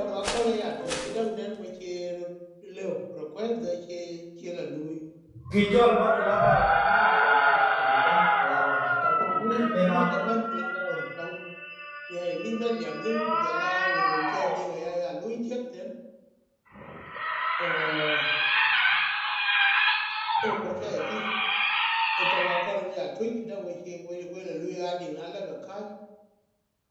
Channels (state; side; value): identical; both; correlation 1.00